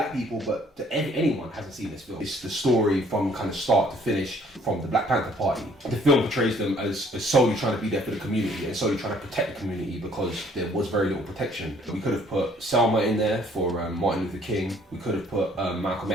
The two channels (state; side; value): normal; both; correlation 0.60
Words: people, but that anyone hasn't seen this film. It's the story from kind of start to finish from the Black Panther Party. The film portrays them as solely trying to be there for the community and solely trying to protect the community because there was very little protection. We could have put Selma in there for Martin Luther King. We could have put Malcolm